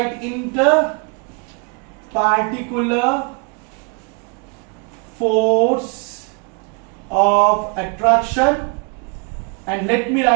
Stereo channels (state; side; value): quieter; left; 34.0 dB